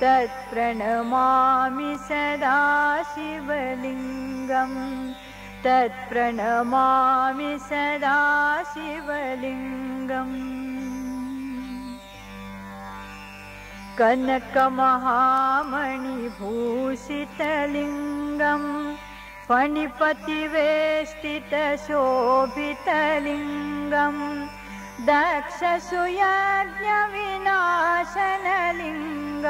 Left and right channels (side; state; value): both; identical; correlation 1.00